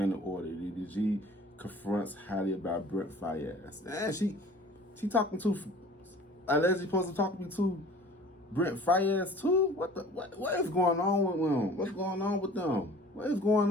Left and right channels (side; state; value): both; normal; correlation 0.47